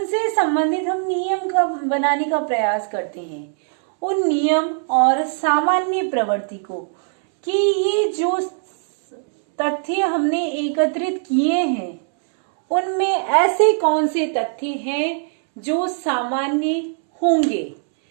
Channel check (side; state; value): left; silent; 66 dB below the other